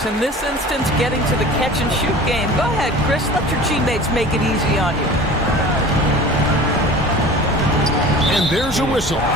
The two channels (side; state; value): both; normal; correlation 0.40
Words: In this instance, getting to the catch-and-shoot game. Go ahead, Chris. Let your teammates make it easy on you. And there's a whistle.